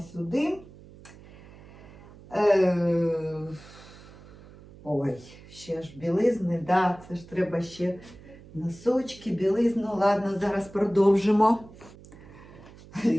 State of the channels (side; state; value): right; noise; hum, 20 dB below the sound